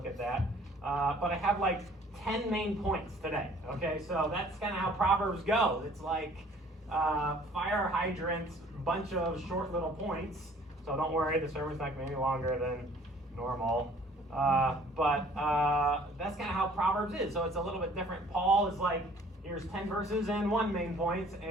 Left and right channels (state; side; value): normal; both; correlation 0.55